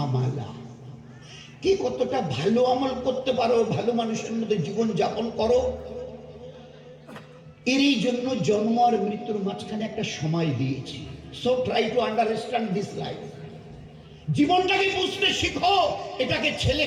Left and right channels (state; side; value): identical; both; correlation 1.00